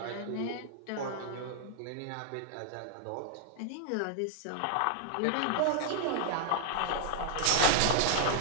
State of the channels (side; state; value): both; different; correlation 0.00